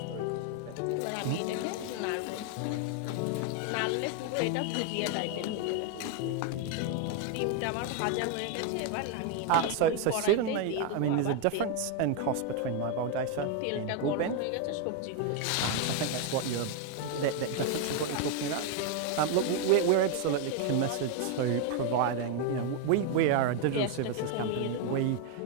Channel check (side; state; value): both; different; correlation 0.01